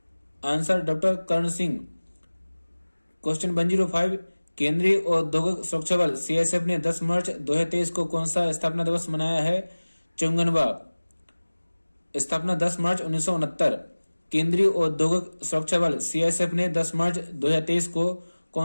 आंसर डॉक्टर कर्ण सिंह। क्वेश्चन 105 केंद्रीय औद्योगिक सुरक्षा बल सीआईएसएफ ने 10 मार्च 2023 को कौन सा स्थापना दिवस मनाया है? चंगनवा। स्थापना 10 मार्च 1969। केंद्रीय औद्योगिक सुरक्षा बल सीआईएसएफ ने 10 मार्च 2023 को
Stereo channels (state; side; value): inverted; both; correlation -1.00